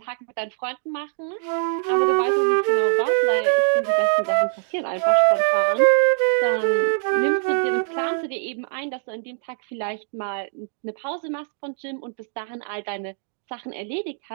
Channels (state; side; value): silent; left; digital silence